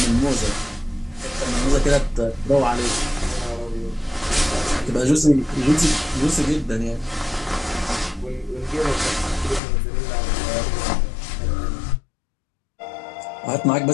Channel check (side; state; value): right; drops out; at 9.6 s